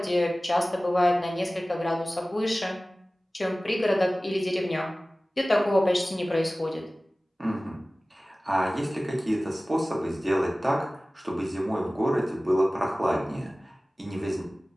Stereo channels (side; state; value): both; normal; correlation 0.98